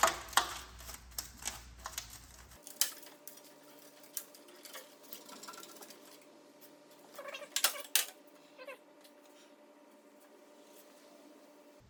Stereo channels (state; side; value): identical; both; correlation 1.00